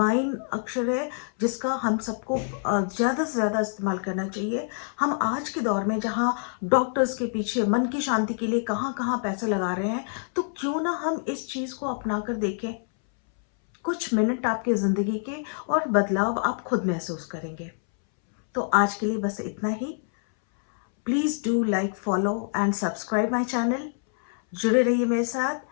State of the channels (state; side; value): silent; right; 61 dB below the other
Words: अक्षर है, जिसका हम सबको ज़्यादा से ज़्यादा इस्तेमाल करना चाहिए। हम आज के दौर में जहाँ डॉक्टर्स के पीछे मन की शांति के लिए कहाँ कहाँ पैसे लगा रहे हैं, तो क्यों ना हम इस चीज़ को अपना कर देखें। कुछ मिनट आपके ज़िंदगी के और बदलाव आप खुद महसूस करेंगे। तो आज के लिए बस इतना ही। Please do like, follow and subscribe my channel. जुड़े रहिए मेरे साथ।